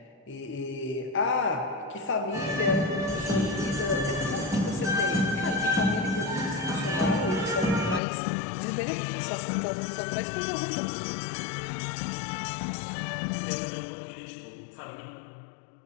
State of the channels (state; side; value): drops out; right; at 8.0 s